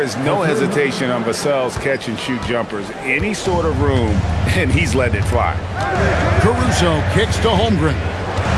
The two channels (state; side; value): identical; both; correlation 1.00